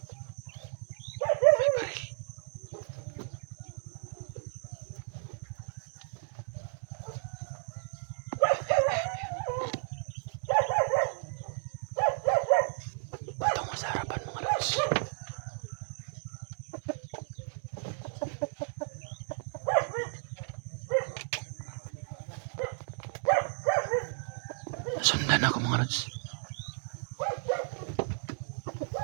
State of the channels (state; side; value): silent; left; digital silence